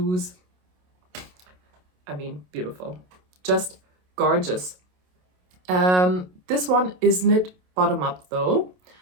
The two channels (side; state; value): left; late; 27 ms